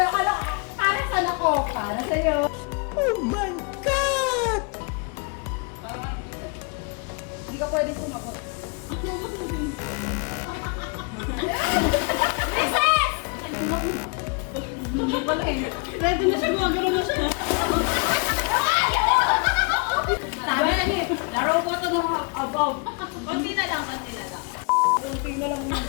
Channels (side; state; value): right; quieter; 33.9 dB